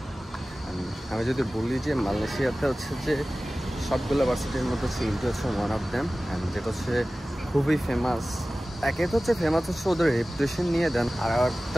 আমি যদি বলি যে মালয়েশিয়াতে হচ্ছে যে সবগুলো ভার্সিটির মধ্যে হচ্ছে ইনটি হচ্ছে ওয়ান অফ দ্যাম, অ্যান্ড যেটা হচ্ছে খুবই ফেমাস। একে তো হচ্ছে ফেমাস হচ্ছে ওদের রেপুটেশন নিয়ে, দেন আর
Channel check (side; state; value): both; normal; correlation 0.97